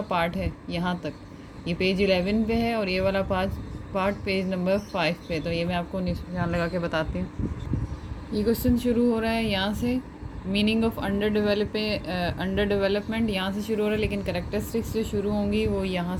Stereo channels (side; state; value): both; identical; correlation 1.00